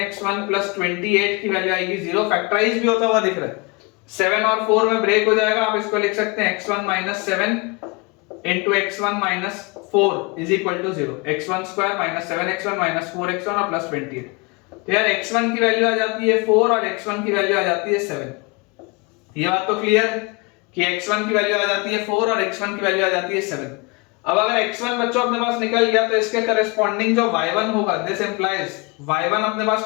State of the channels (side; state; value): right; quieter; 27.9 dB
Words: plus 28 की वैल्यू आएगी 0। फैक्टराइज भी होता हुआ दिख रहा है, 7 और 4 में ब्रेक हो जाएगा। आप इसको लिख सकते हैं x1 minus 7 into x1 minus 4 is equal to 0। x1 square minus 7x1 minus 4x1 और प्लस 28। तो यार x1 की वैल्यू आ जाती है 4 और x1 की वैल्यू आ जाती है 7। ये बात तो क्लियर कि x1 की वैल्यू आ जाती है 4 और x1 की वैल्यू आ जाती है 7। अब अगर x1 बच्चों अपने पास निकल गया तो इसके करेस्पॉन्डिंग जो y1 होगा, दिस इंप्लाइज y1 अपने